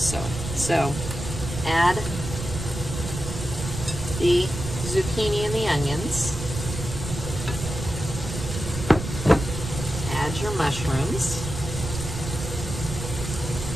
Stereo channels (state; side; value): noise; right; rumble, 6 dB below the sound